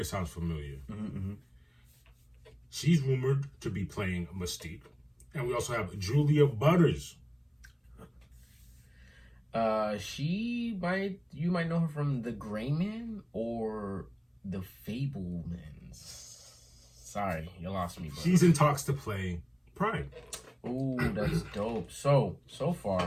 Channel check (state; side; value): identical; both; correlation 1.00